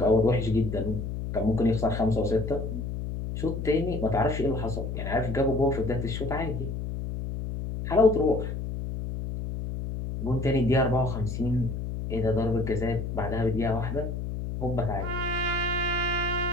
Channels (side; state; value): left; noise; hum, 5 dB below the sound